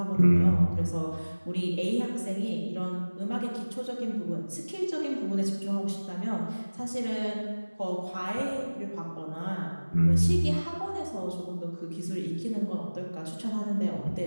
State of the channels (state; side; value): inverted; both; correlation -1.00